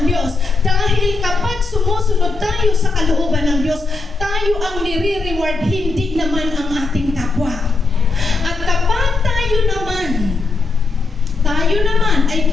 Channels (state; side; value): quieter; right; 3.8 dB